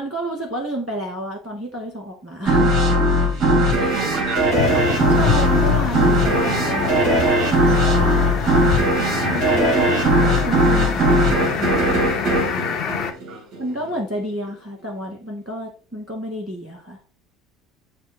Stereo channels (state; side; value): normal; both; correlation 0.34